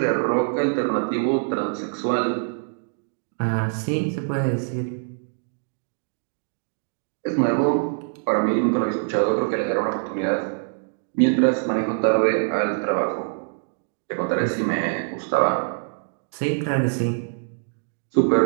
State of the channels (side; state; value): left; silent; digital silence